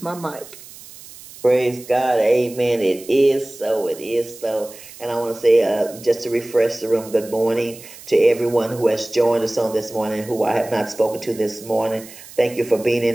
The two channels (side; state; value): right; noise; hiss, 18 dB below the sound